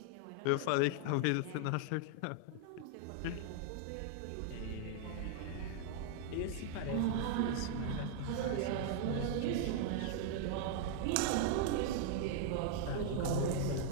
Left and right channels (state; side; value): different; both; correlation 0.00